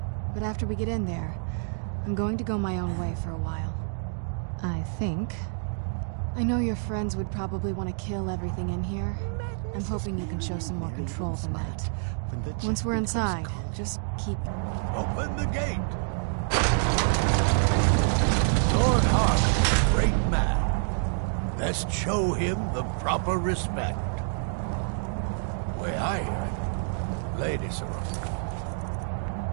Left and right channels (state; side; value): silent; left; digital silence